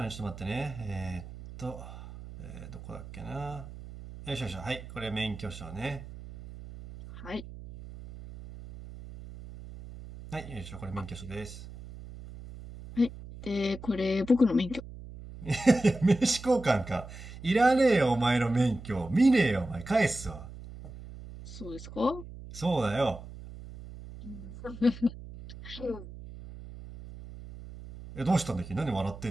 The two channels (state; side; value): noise; right; hum, 14 dB below the sound